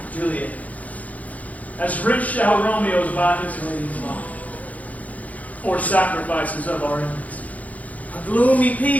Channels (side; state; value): right; late; 0.072 ms